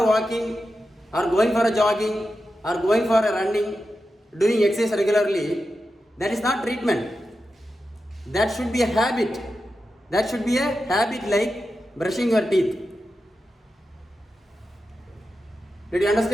walking or going for a jogging or going for a running, doing exercise regularly, that is not treatment. That should be a habit. That should be a habit like brushing your teeth. Did you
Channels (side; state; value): both; normal; correlation 0.90